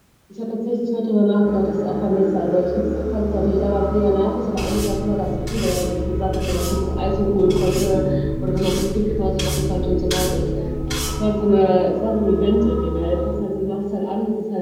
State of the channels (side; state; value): both; identical; correlation 1.00